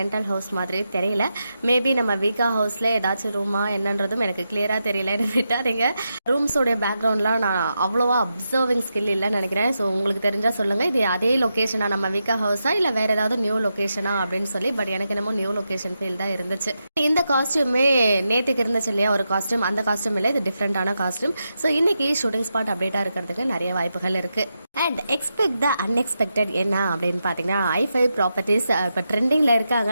ஹவுஸ் மாதிரி தெரியல. மேபி நம்ம வீக்கா ஹவுஸ்ல ஏதாச்சும் ரூமா என்னன்றதும் எனக்கு கிளியரா தெரியல. விட்டாதீங்க. ரூம்ஸோடைய பேக்ரவுண்ட்லாம் நான் அவ்வளோவா அப்சர்விங் ஸ்கில் இல்லைன்னு நினைக்கிறேன். ஸோ உங்களுக்கு தெரிஞ்சா சொல்லுங்க, இது அதே லொக்கேஷனா நம்ம வீக்கா ஹவுஸா இல்லை வேற ஏதாவது நியூ லொக்கேஷனா அப்படின்னு சொல்லி. பட் எனக்கு என்னமோ நியூ லொக்கேஷன் ஃபீல் தான் இருந்துச்சு. இந்த காஸ்டியூமே நேற்றுக்கு இருந்துச்சு இல்லையா ஒரு காஸ்டியூம், அந்த காஸ்டியூம் இல்லை, இது டிஃப்ரெண்டான காஸ்டியூம். ஸோ இன்னைக்கு ஷூட்டிங் ஸ்பாட் அப்டேட்டா இருக்கிறதுக்கு நிறைய வாய்ப்புகள் இருக்கு. அண்ட் எக்ஸ்பெக்ட் த அன்எக்ஸ்பெக்டட் என்ன அப்படின்னு பார்த்தீங்கன்னா, i5 ப்ராப்பர்ட்டிஸ் இப்போ ட்ரெண்டிங்ல இருக்காங்க.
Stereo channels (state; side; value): inverted; both; correlation -0.87